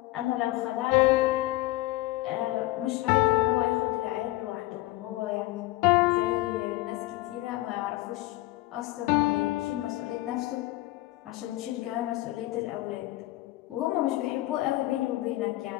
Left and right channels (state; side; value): quieter; right; 18.3 dB